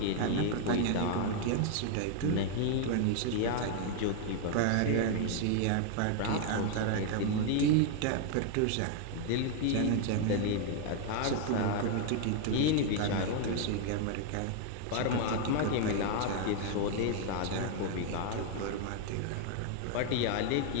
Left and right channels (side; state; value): both; different; correlation 0.00